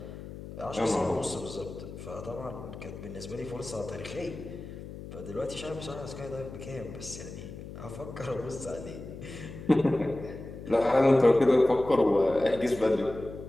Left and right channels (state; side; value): noise; left; hum, 12 dB below the sound